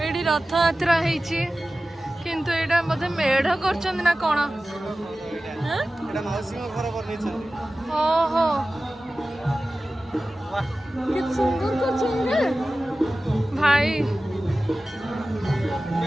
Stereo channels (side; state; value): both; normal; correlation 0.96